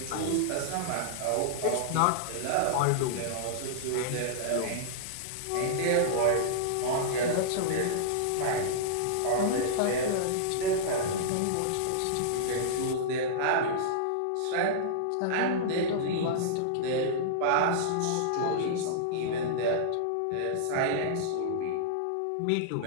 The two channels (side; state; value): both; different; correlation -0.02